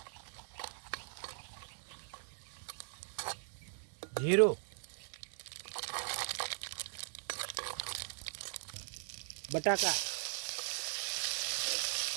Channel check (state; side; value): silent; left; digital silence